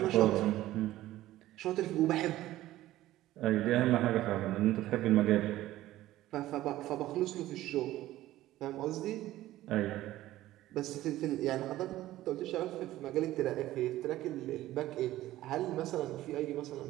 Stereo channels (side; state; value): left; quieter; 15.2 dB